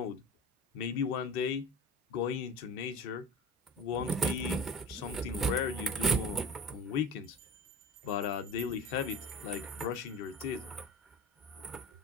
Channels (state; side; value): normal; both; correlation 0.35